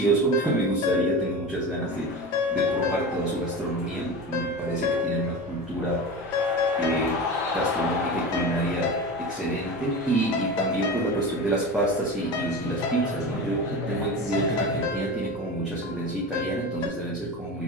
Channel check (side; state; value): both; normal; correlation 0.28